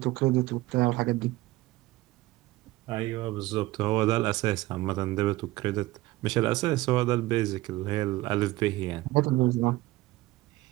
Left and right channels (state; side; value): quieter; left; 18.7 dB